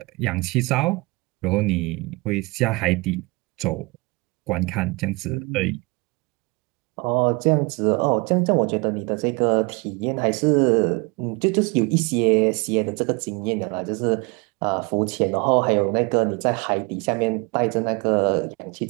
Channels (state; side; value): quieter; left; 27.1 dB